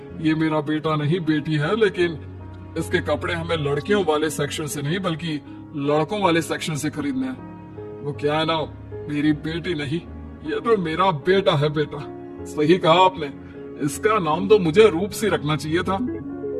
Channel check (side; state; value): both; identical; correlation 1.00